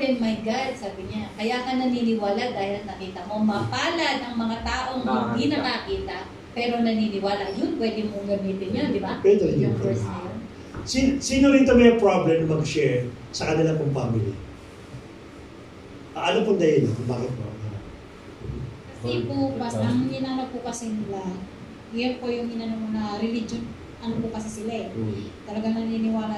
and my God, sabi niya. Kaya ka naniniwala dahil nakita mo. Mapalad ang mga taong hindi nakakita pero naniniwala. Yun, pwede mong gamitin yun, di ba? Pwede rin Yung yun. verse na yun. Sino rin ito may problem mag-share sa kanila pong family? Ano pong dahilan kung bakit po? Kasi po, ang inano po kasi nila, yun po yung inano na religion, ano po kasi sila eh. Talagang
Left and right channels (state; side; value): identical; both; correlation 1.00